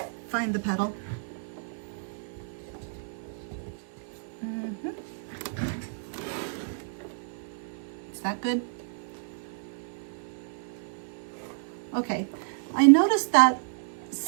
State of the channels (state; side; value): silent; left; digital silence